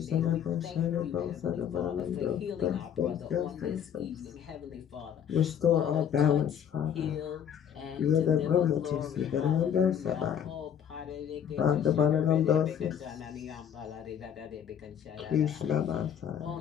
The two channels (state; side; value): quieter; right; 8.7 dB